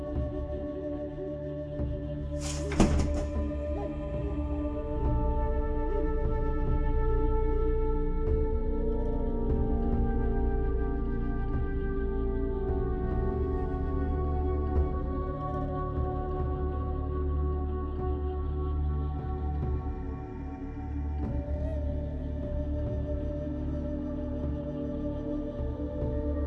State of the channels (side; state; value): both; identical; correlation 1.00